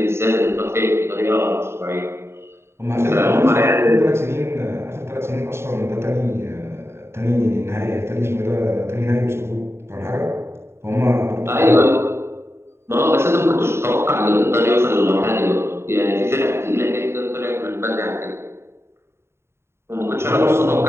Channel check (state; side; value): late; left; 0.12 ms